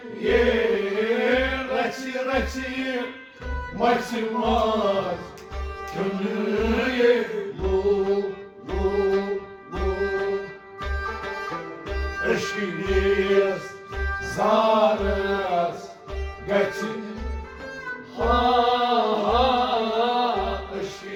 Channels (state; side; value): identical; both; correlation 1.00